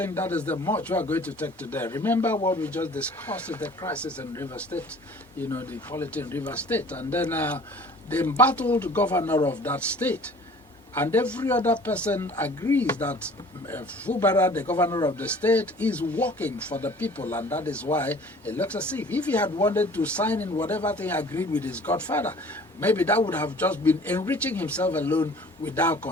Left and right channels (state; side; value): normal; both; correlation 0.48